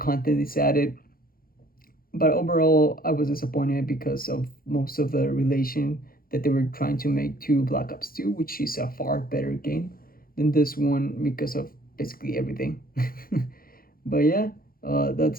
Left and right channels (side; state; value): right; late; 0.42 ms